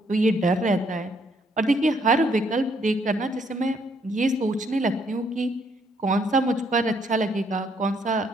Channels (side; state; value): both; normal; correlation 0.70